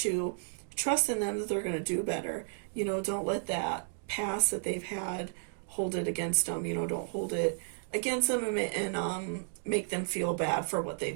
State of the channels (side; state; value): left; silent; digital silence